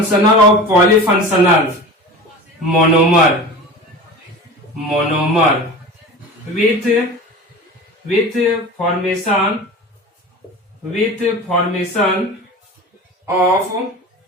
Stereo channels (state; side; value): normal; both; correlation 0.33